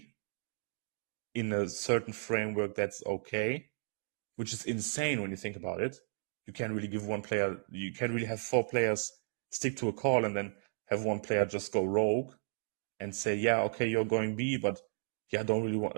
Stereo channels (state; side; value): silent; left; digital silence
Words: in a certain framework, that's okay, which is insane when you think about it. You can't really give one player, you can't really have four players stick to a call and then have one player just go rogue and say, okay, you're going B, but I don't really want